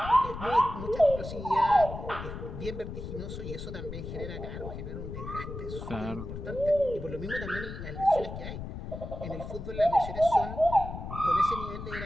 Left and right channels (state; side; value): noise; left; rumble, 8 dB below the sound